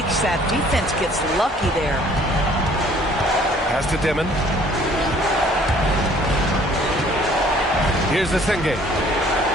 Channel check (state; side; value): normal; both; correlation 0.57